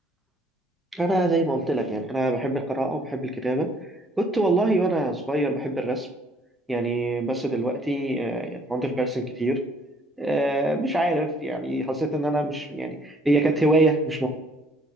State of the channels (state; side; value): normal; both; correlation 0.61